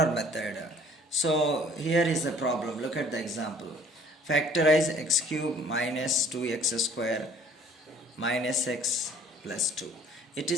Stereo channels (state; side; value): normal; both; correlation 0.55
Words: method. So here is the problem. Look at the example. Factorize x cube minus 2x square minus x plus 2. It